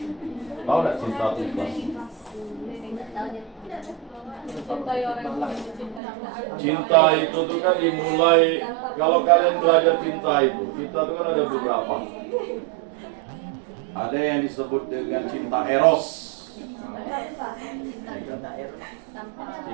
Tahu enggak cinta itu ikhlas? Cinta itu tuh kan dimulai, kalau kalian belajar cinta itu, cinta itu kan ada beberapa. Ada yang disebut dengan cinta eros.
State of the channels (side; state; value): left; drops out; at 6.0 s